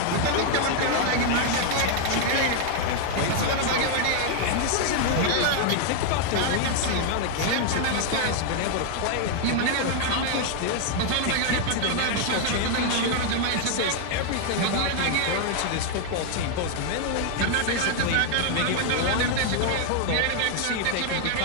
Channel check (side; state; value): both; different; correlation 0.00